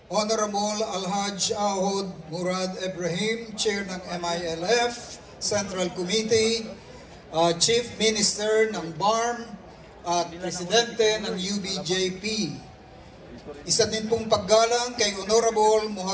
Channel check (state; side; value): identical; both; correlation 1.00